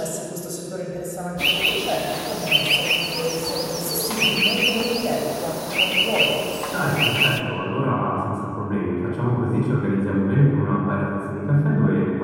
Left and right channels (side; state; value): both; identical; correlation 1.00